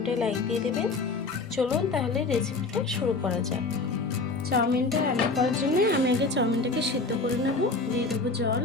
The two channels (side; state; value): right; quieter; 3.7 dB